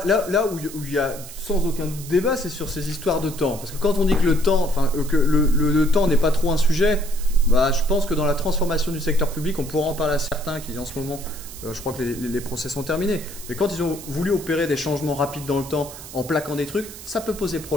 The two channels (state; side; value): noise; right; hiss, 14 dB below the sound